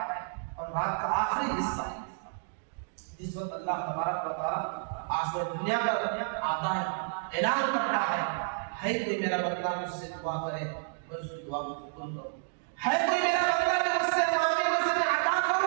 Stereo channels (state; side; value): silent; left; digital silence